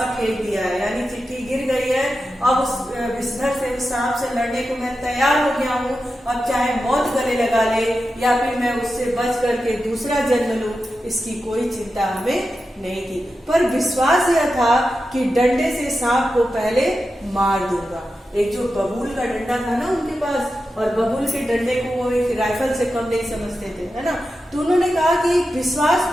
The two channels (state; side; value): normal; both; correlation 0.90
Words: फेंक दिया है, यानी चिट्ठी गिर गई है, अब उस विषधर से, उस सांप से लड़ने को मैं तैयार हो गया हूँ। अब चाहे मौत गले लगा ले या फिर मैं उससे बच करके दूसरा जन्म लूं, इसकी कोई चिंता हमें नहीं थी। पर विश्वास यह था कि डंडे से सांप को पहले मार दूंगा। एक जो बबूल का डंडा था ना उनके पास, और बबूल के डंडे को वो एक राइफल से कम नहीं समझते थे, है ना। तो उन्होंने कहा कि